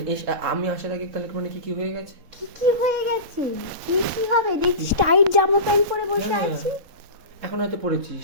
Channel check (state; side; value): late; left; 4.2 ms